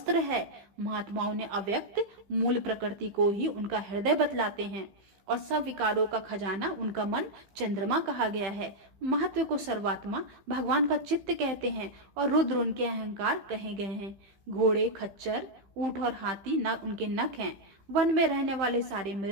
है। महात्माओं ने अव्यक्त मूल प्रकृति को ही उनका हृदय बतलाते हैं और सब विकारों का खजाना उनका मन चंद्रमा कहा गया है। महत्व को सर्वात्मा भगवान का चित्त कहते हैं और रुद्र उनके अहंकार कहे गए हैं। घोड़े खच्चर ऊंट और हाथी न उनके नख हैं। वन में रहने वाले सारे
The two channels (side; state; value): left; late; 15 ms